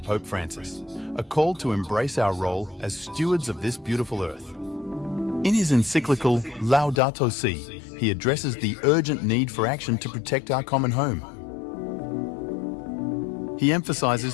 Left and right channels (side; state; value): right; drops out; at 7.0 s